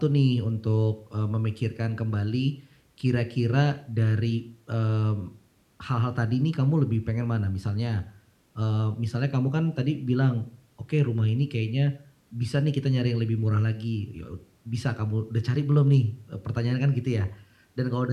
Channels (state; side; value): identical; both; correlation 1.00